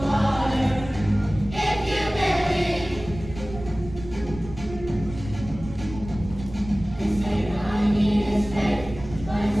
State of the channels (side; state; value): right; noise; rumble, 13 dB below the sound